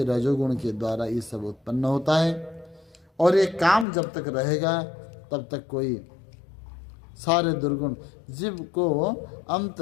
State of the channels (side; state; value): right; drops out; at 3.9 s